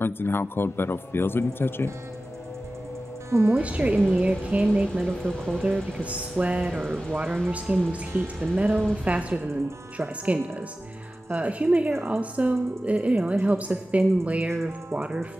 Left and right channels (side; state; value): both; normal; correlation 0.95